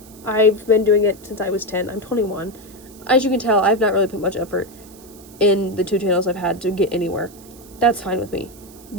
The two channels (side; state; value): right; noise; hiss, 22 dB below the sound